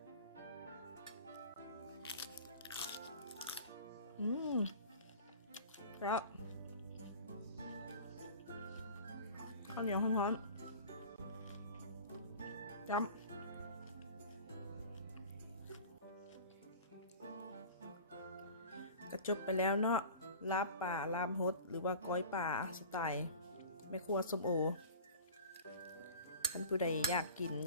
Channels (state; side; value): inverted; both; correlation -0.40